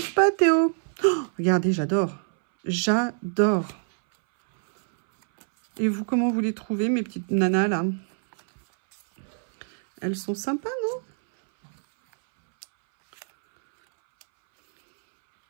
pas, Théo. Oh, regardez, j'adore. J'adore. Et vous, comment vous les trouvez, mes petites nanas, là? Elles sont sympas,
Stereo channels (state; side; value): silent; left; 62 dB below the other